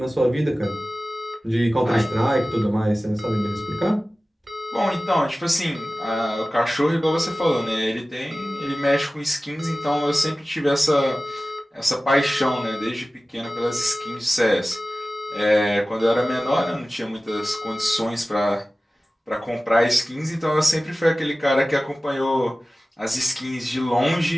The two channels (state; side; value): normal; both; correlation 0.96